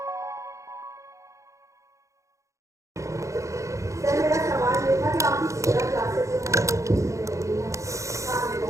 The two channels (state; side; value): late; left; 0.15 ms